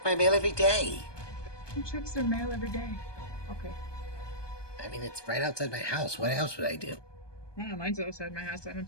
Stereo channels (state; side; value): late; right; 1.2 ms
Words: my mail every day. Who checks their mail every day? Okay. I mean, it's right outside my house. What else would I do? Oh, mine's outside my house. I don't